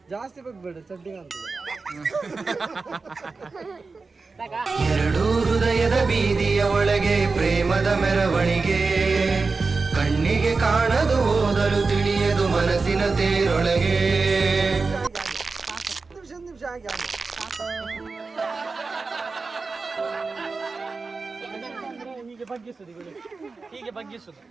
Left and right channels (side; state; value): left; quieter; 4.2 dB